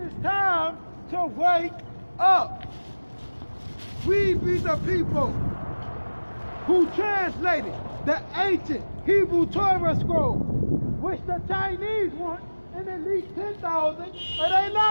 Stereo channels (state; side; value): inverted; both; correlation -1.00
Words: time to wake up. We be the people who translated the ancient Hebrew Torah scroll, which the Chinese want in at least 10,000 of their